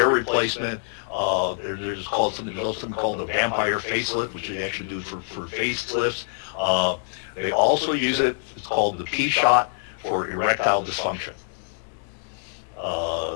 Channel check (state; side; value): silent; right; digital silence